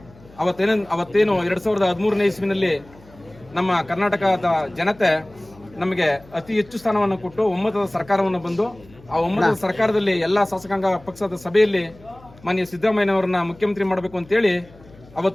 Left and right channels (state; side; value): noise; left; hum, 24 dB below the sound